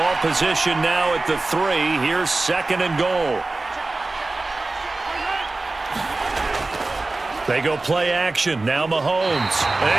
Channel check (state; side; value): quieter; left; 3.2 dB